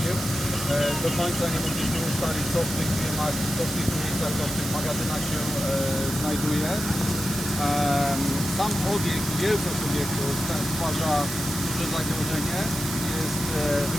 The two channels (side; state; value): right; noise; hiss, 5 dB below the sound